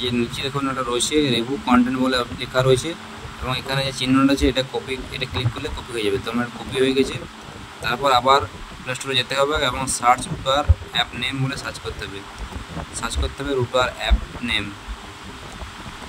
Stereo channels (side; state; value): both; identical; correlation 1.00